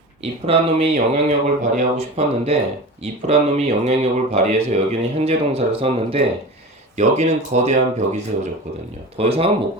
영향력을 발휘하고 싶었는데 if란 놈이 영향력을 발휘해서 여기는 현재 동사를 썼는데 여기는 거대한 벽이 세워졌거든요. 더 이상은 못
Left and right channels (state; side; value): normal; both; correlation 0.31